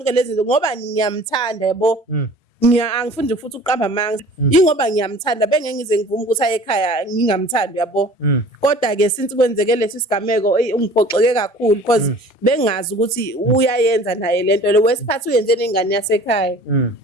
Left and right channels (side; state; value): both; normal; correlation 0.46